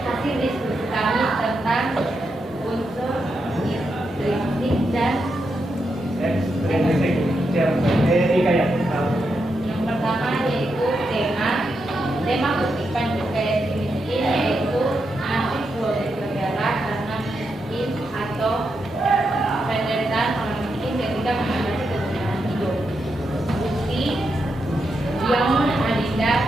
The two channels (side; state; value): both; normal; correlation 0.84